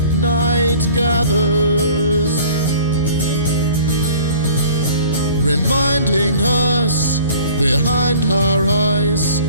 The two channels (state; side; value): inverted; both; correlation -0.48